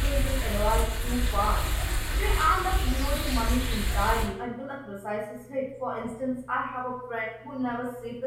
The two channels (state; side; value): identical; both; correlation 1.00